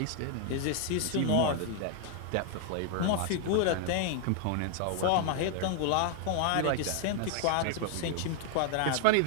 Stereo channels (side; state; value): both; different; correlation 0.00